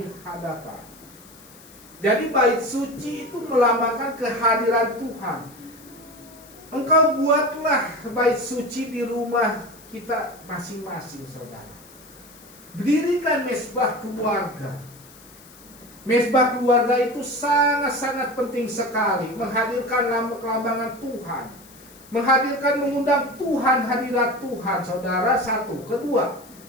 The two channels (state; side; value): noise; left; hiss, 22 dB below the sound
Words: hadapan. Jadi bait suci itu melambangkan kehadiran Tuhan. Engkau buatlah bait suci di rumah kita masing-masing, saudara. Dirikan mesbah keluarga. Mesbah keluarga itu sangat-sangat penting sekali. Menghadirkan kelambangan Tuhan, menghadirkan, mengundang Tuhan, hadirat Tuhan, saudara. Satu. Kedua,